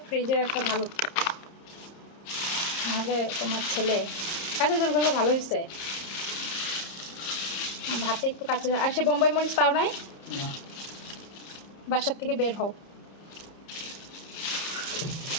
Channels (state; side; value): late; right; 30 ms